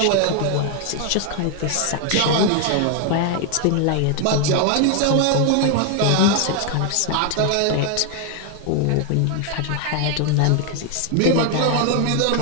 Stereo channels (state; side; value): different; both; correlation 0.01